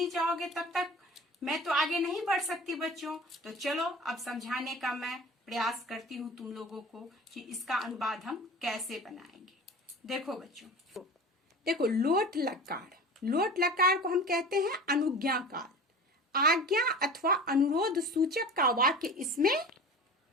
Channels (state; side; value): normal; both; correlation 0.37